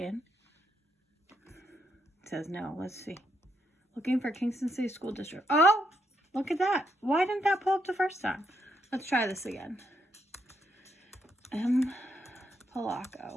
It says no. Let's see. Looking for Kingston City School District. Oh, look at that. Why didn't that pull up the first time? Let's try this again. M.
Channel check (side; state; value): both; normal; correlation 0.77